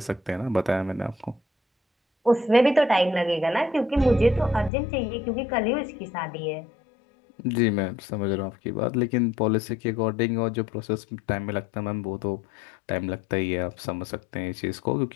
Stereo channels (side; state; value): right; drops out; at 4.7 s